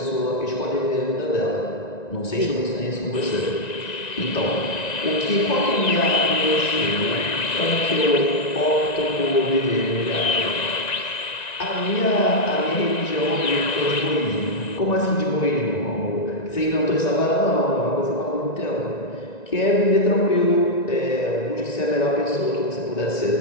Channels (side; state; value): right; late; 1.9 ms